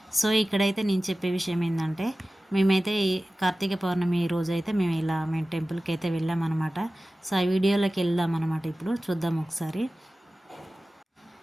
సో ఇక్కడైతే నేను చెప్పే విషయం ఏంటంటే, మేమైతే ఈ కార్తీక పౌర్ణమి రోజు అయితే మేము టెంపుల్కి అయితే వెళ్ళామన్నమాట. సో ఆ వీడియోలోకి వెళ్దాం అనమాట. ఇప్పుడు చూద్దాం ఒకసారి.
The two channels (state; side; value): normal; both; correlation 0.96